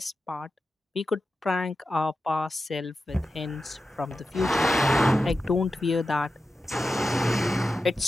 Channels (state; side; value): normal; both; correlation 0.91